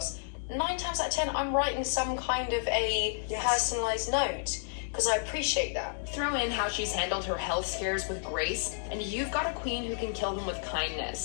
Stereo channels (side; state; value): right; silent; digital silence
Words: 9 times out of 10, I'm writing some kind of a personalised note, because I appreciate that. Throw in how she's handled her health scares with grace, and you've got a queen who can kill them with